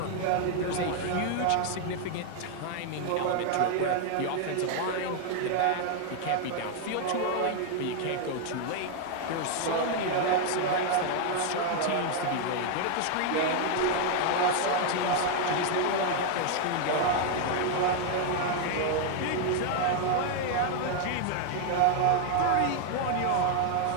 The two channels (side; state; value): both; different; correlation 0.00